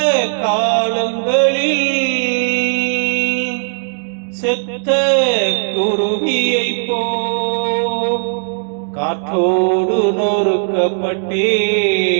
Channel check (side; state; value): left; silent; 68 dB below the other